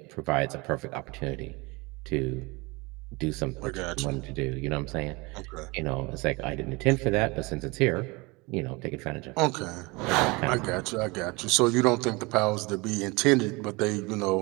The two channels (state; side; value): quieter; left; 25.5 dB